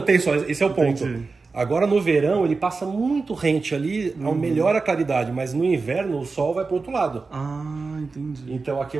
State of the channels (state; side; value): quieter; left; 4.2 dB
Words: tem sol, esse é o ponto. Entendi. Agora no verão ele passa muito rente ali, melhora a claridade, mas no inverno o sol vai para o outro lado. Ah, entendi. Então aqui é